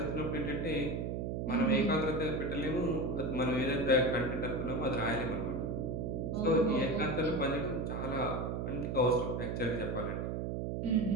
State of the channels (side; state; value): right; noise; hum, 2 dB below the sound